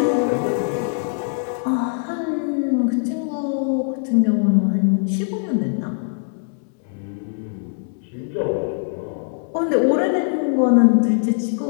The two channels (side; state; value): right; silent; 65 dB below the other